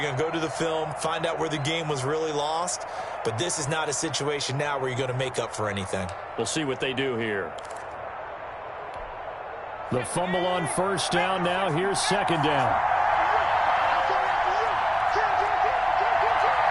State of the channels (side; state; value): both; identical; correlation 1.00